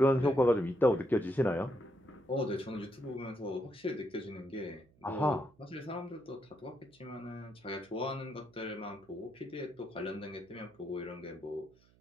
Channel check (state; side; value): noise; right; hum, 30 dB below the sound